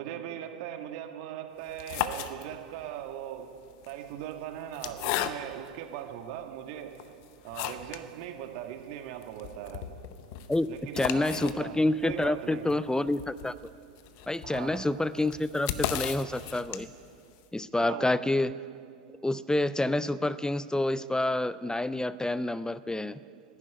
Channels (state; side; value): normal; both; correlation 0.77